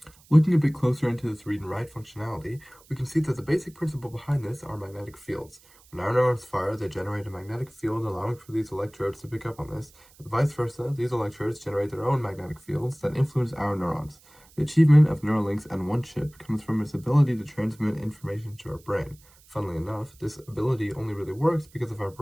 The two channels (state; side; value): noise; right; hiss, 27 dB below the sound